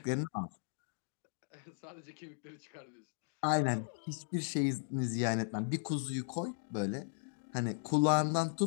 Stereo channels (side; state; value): right; silent; digital silence